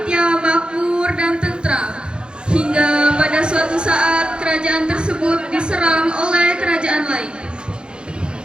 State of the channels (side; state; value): left; late; 0.051 ms